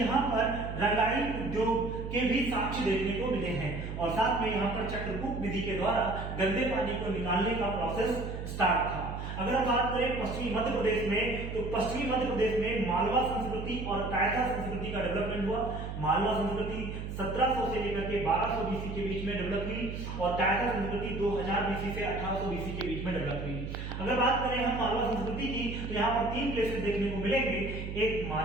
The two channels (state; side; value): noise; right; hum, 6 dB below the sound